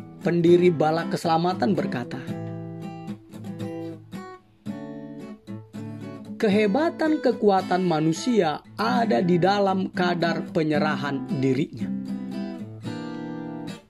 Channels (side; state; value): both; identical; correlation 1.00